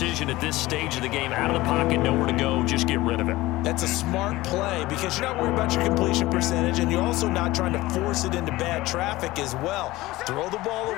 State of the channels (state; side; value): quieter; right; 18.6 dB